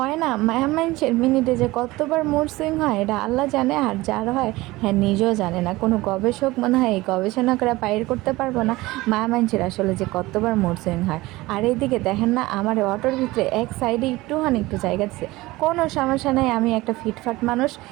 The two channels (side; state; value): left; quieter; 19.7 dB